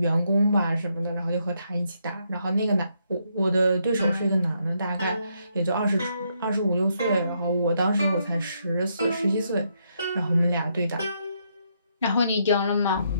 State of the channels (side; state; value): both; inverted; correlation -0.77